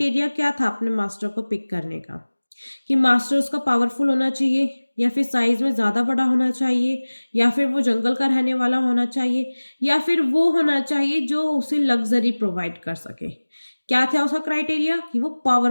क्या था अपने मास्टर को पिक करने का? कि मास्टर उसका पावरफुल होना चाहिए, या फिर साइज में ज़्यादा बड़ा होना चाहिए, या फिर वो जंगल का रहने वाला होना चाहिए, या फिर वो होना चाहिए जो उसे लग्जरी प्रोवाइड कर सके। क्या था उसका क्राइटेरिया? कि वो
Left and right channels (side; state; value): both; inverted; correlation -1.00